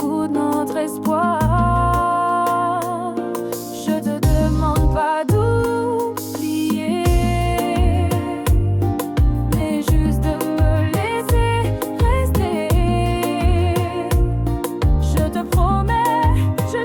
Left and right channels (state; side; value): identical; both; correlation 1.00